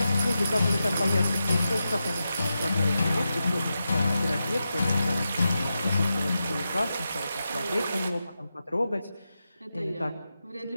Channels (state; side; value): inverted; both; correlation -0.89